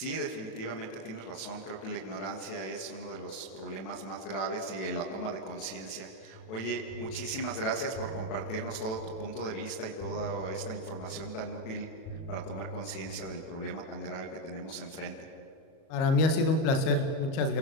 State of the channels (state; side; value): late; right; 36 ms